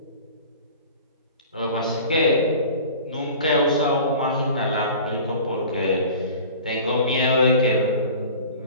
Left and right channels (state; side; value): inverted; both; correlation -0.41